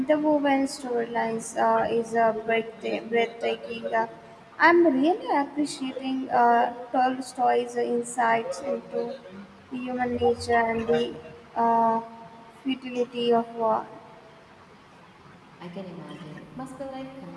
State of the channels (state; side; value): identical; both; correlation 1.00